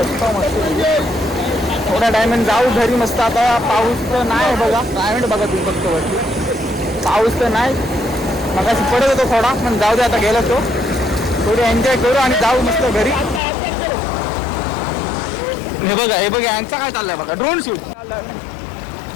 मस्त. थोड्या टायमाने जाऊ घरी मस्त. आता पाऊस तर नाही बघा. क्लायमेट बघा तुम्ही फक्त वरती. पाऊस तर नाही मगाशी पडत होतो थोडा पण जाऊ दे आता गेलो तो. थोडी एन्जॉय करू आणि जाऊ मस्त घरी. हे बघा यांचा काय चाललंय बघा. ड्रोन शूट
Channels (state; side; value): drops out; right; at 13.4 s